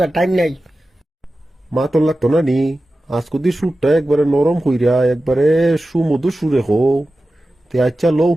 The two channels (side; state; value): both; normal; correlation 0.94